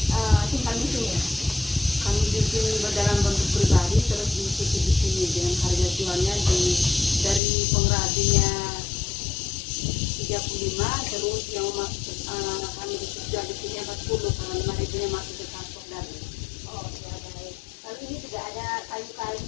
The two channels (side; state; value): right; drops out; at 7.4 s